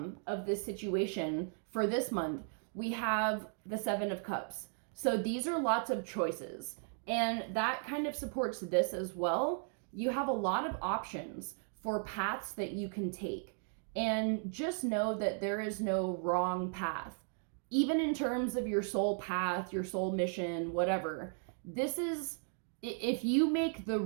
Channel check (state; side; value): silent; left; 54 dB below the other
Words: of this situation for this month, we have the Seven of Cups. So these are lots of choices, and that kind of supports this as well. You have a lot of options for paths that you can take. And just know that there is no wrong path. Even in terms of your soul path, your soul mission, whatever. This is, if you make the